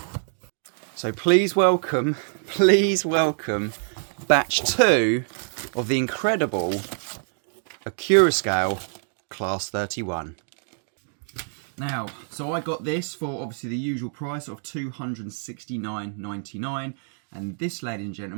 So please welcome batch 2 of the incredible Accurascale Class 31. Now, so I got this for obviously the usual price of $269.99, and this, ladies and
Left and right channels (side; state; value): left; silent; 60 dB below the other